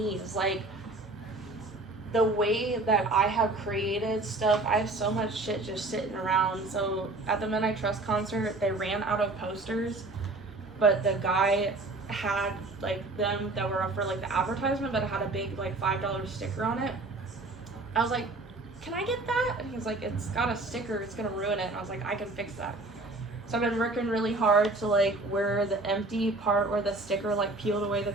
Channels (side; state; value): left; quieter; 3.1 dB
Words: is like the way that I have created stuff. I have so much shit just sitting around. So at the Men I Trust concert, they ran out of posters, but the guy had like them that were up for like the advertisement, but it had a big like $5 sticker on it. I was like, can I get that? And he was like, it's got a sticker, it's gonna ruin it. And I was like, I can fix that. So I've been working really hard to like where the empty part where the sticker like peeled away the